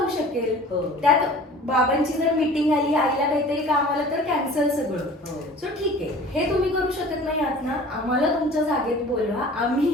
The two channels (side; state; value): both; normal; correlation 0.44